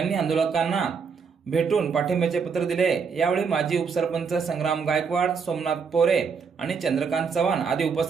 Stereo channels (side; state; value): left; quieter; 5.8 dB